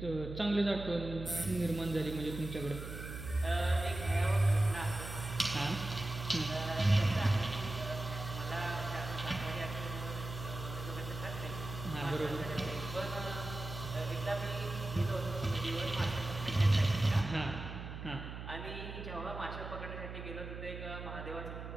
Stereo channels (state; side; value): noise; right; hum, 8 dB below the sound